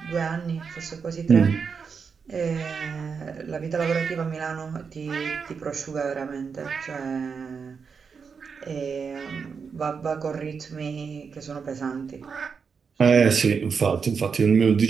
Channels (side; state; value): left; quieter; 5.8 dB